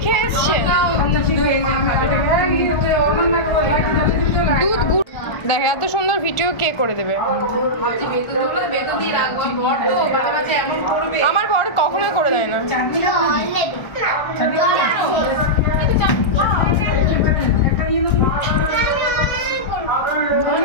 খেয়ে এসছে, দুধ গুড়। দেখ এত সুন্দর ভিডিও কে করে দেবে? আমার বর কখনোই করে দেয় না।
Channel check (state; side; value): late; right; 1.3 ms